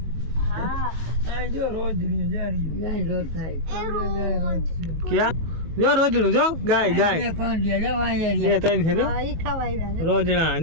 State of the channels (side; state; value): left; late; 18 ms